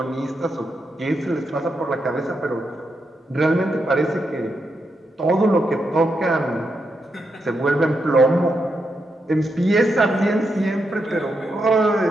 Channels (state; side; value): normal; both; correlation 0.84